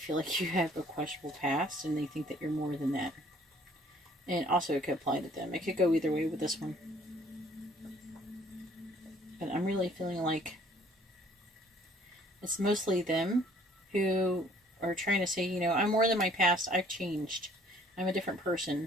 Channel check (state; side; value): normal; both; correlation 0.58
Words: like you have a questionable past and they think that you're more than that. And also it could apply to them. It could go either way with this one. But I'm really feeling like it's mostly them who are trying to say, you know, I'm more than my past. I've changed. I'm a different